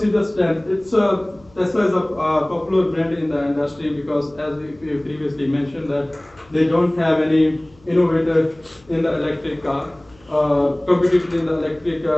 is the strength. Tesla is a popular brand in the industry because, as we previously mentioned, that they don't have any innovator in the electric car, competitor in the electric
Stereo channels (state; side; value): noise; left; hum, 29 dB below the sound